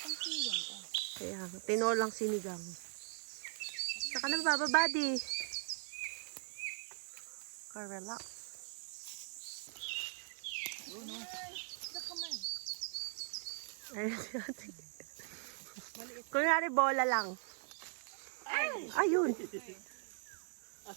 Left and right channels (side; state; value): left; silent; 51 dB below the other